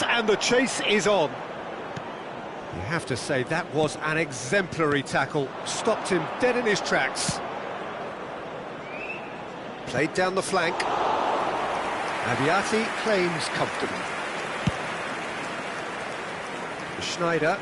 and the chase is on. You have to say that was an exemplary tackle, stopped him dead in his tracks. Played down the flank. Abiati claims comfortably. Schneider.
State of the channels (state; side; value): identical; both; correlation 1.00